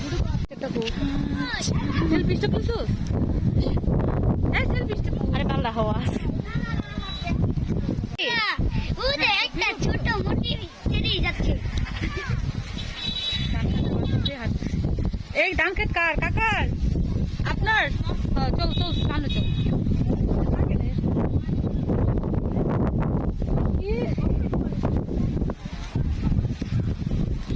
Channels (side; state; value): both; identical; correlation 1.00